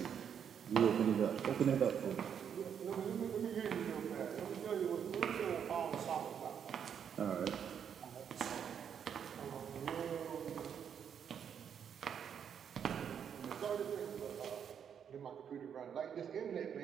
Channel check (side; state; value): left; quieter; 8.0 dB